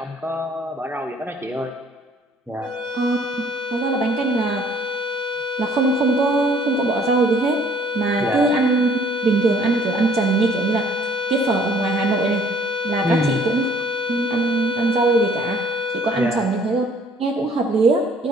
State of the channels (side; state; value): both; normal; correlation 0.58